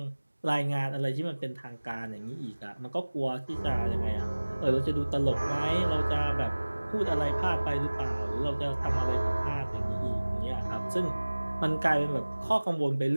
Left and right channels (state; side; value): inverted; both; correlation -1.00